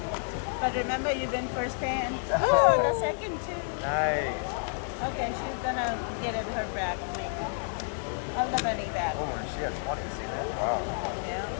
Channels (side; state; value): right; silent; digital silence